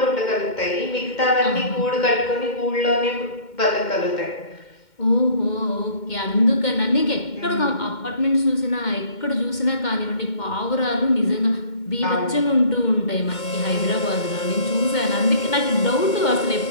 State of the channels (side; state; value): right; late; 2.1 ms